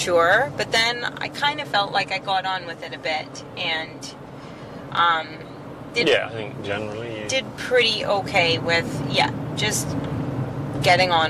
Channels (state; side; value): identical; both; correlation 1.00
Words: but then I kind of felt like I got on with it a bit, and I think generally did pretty okay with just getting